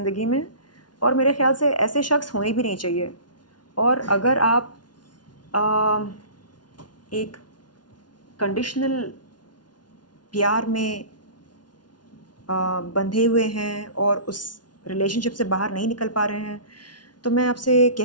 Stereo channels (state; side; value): late; right; 0.70 ms